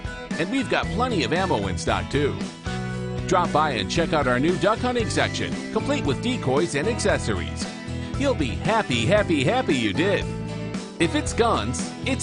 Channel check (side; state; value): both; identical; correlation 1.00